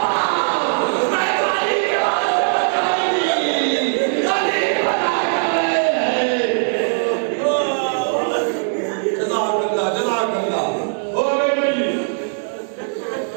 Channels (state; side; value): silent; left; digital silence